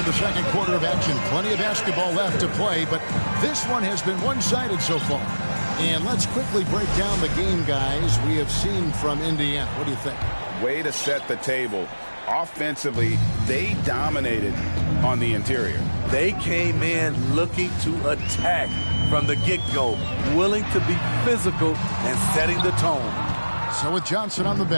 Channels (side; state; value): both; inverted; correlation -1.00